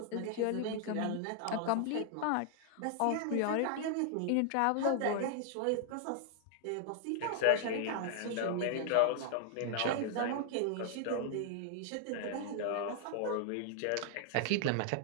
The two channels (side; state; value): both; different; correlation 0.00